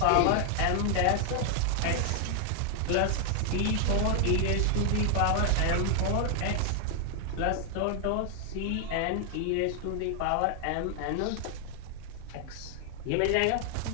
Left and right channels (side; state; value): both; different; correlation 0.00